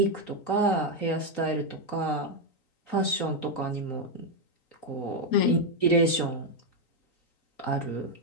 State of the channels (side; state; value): right; late; 3.9 ms